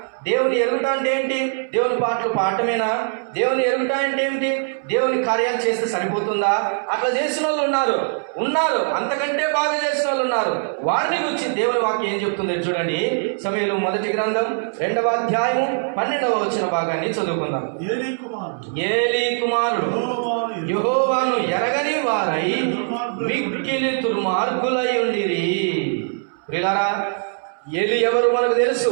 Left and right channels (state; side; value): silent; left; 65 dB below the other